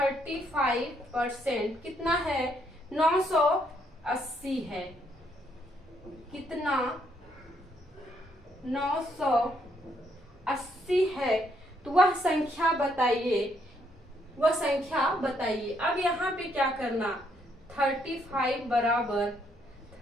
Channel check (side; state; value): both; normal; correlation 0.72